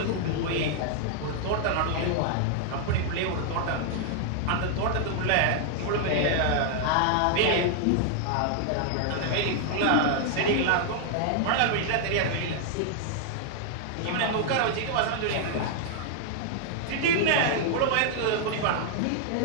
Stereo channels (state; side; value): different; both; correlation 0.00